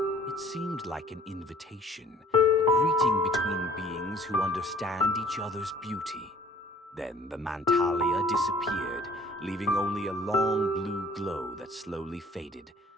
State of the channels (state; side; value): normal; both; correlation 0.54